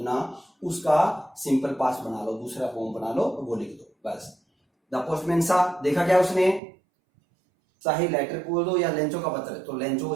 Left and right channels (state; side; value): drops out; left; at 6.6 s